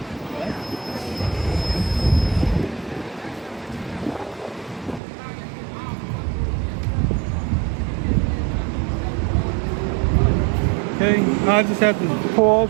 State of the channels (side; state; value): left; drops out; at 5.0 s